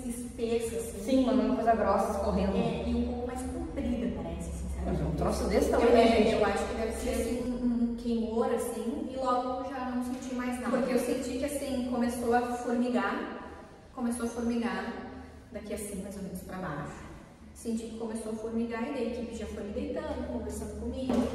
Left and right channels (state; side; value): identical; both; correlation 1.00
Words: espessa, assim. Sim, uma coisa grossa escorrendo. E um pouco mais comprida, parece, sinceramente. Um troço desse tamanho, gente. Eu acho que deve ser assim, um queimor, assim, e logo eu já não senti mais nada. Porque eu senti que, assim, começou a formigar daqui assim, mais ou menos pra baixo. Senti que começou a formigar e daí a equipe já foi me deitando, conversando comigo.